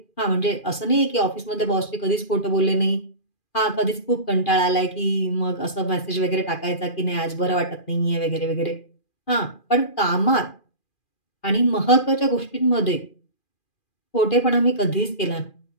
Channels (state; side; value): late; right; 2.4 ms